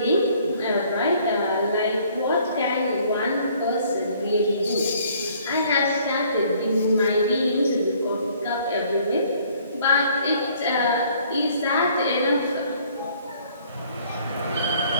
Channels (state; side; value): inverted; both; correlation -0.59